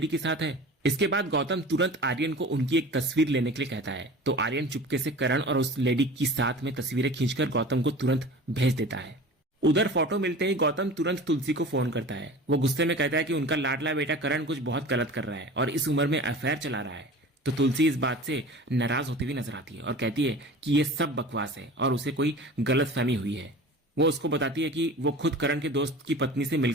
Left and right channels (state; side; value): normal; both; correlation 0.38